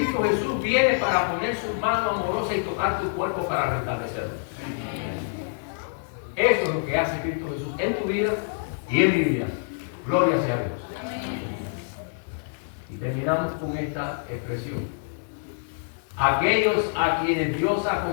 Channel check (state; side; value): silent; right; digital silence